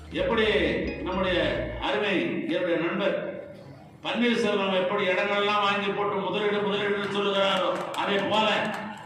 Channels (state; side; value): identical; both; correlation 1.00